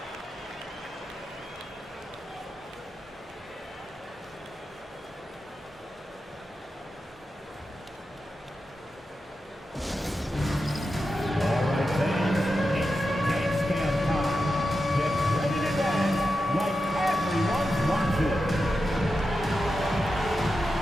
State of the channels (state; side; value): normal; both; correlation 0.90